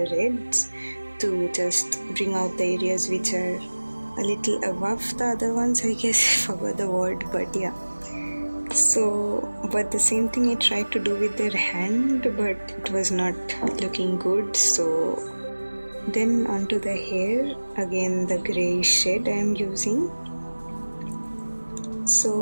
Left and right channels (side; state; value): both; inverted; correlation -1.00